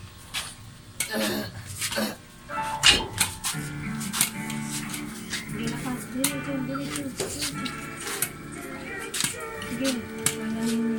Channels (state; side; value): identical; both; correlation 1.00